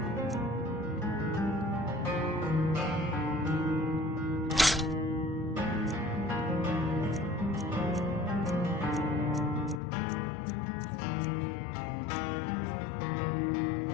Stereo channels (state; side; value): drops out; right; at 9.8 s